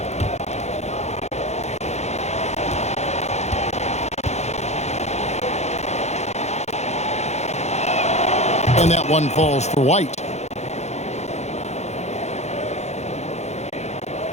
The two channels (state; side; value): late; right; 0.32 ms